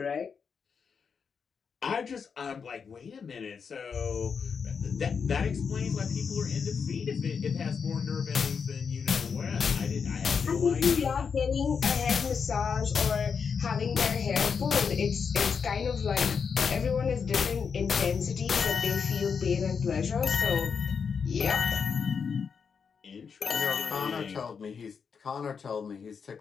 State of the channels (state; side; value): quieter; right; 6.1 dB